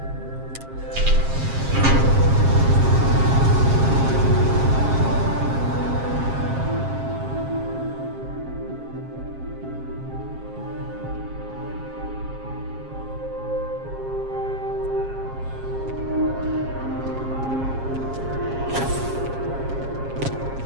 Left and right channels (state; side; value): late; left; 7.5 ms